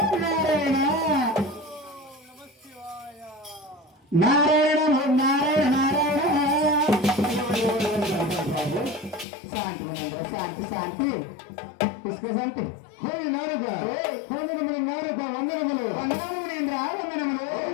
నారాయణ నారాయణ నారాయణ నారాయణ. శాంతి శాంతి శాంతి పుష్క శాంతి. హోలి నారుగా హోమినములు నారుగా వందనములు వందనములేంద్ర వందనములు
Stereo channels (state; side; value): drops out; right; at 9.2 s